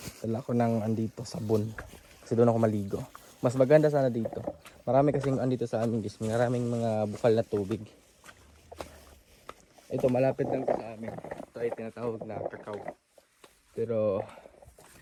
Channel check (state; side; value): identical; both; correlation 1.00